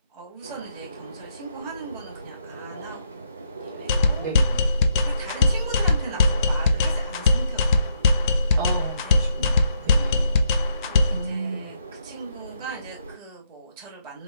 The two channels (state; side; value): inverted; both; correlation -0.77